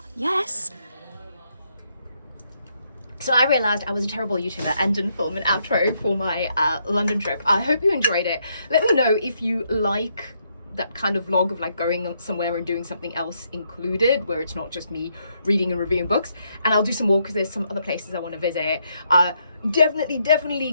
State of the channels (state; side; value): inverted; both; correlation -0.75